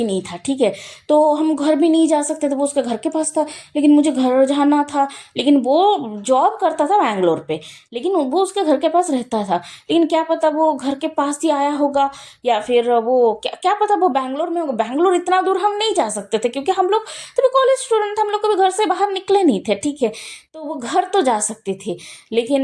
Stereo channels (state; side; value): identical; both; correlation 1.00